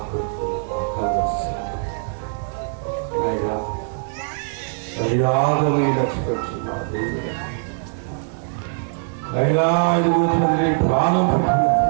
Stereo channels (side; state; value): left; silent; digital silence